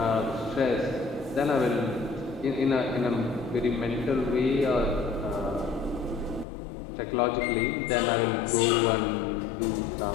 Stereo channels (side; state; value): right; drops out; at 6.5 s